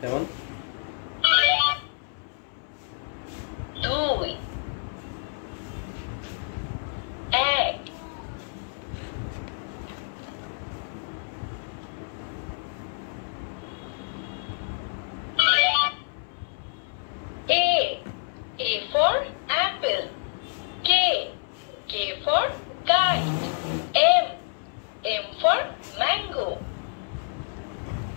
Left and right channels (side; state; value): right; silent; 59 dB below the other